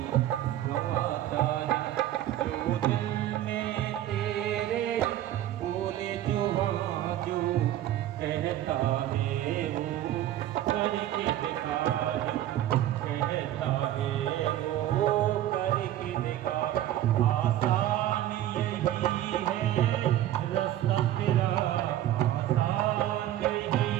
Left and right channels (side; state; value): left; quieter; 12.9 dB